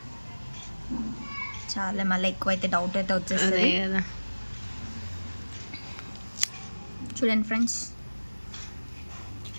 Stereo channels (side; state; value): both; inverted; correlation -1.00